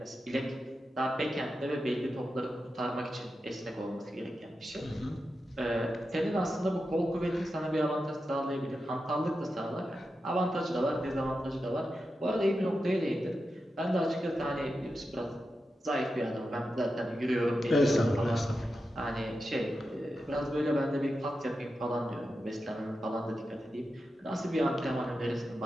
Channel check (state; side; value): normal; both; correlation 0.90